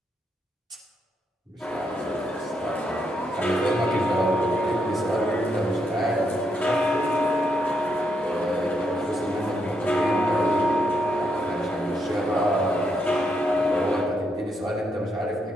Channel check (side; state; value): both; normal; correlation 0.78